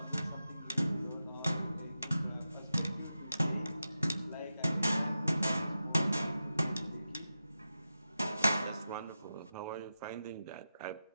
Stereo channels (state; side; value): inverted; both; correlation -0.91